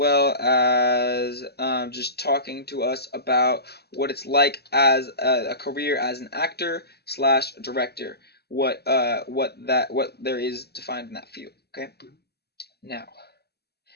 as just talking to us about what it's like as a career as an actor / director, what there is to find in that field. Okay, now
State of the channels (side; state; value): right; late; 0.47 ms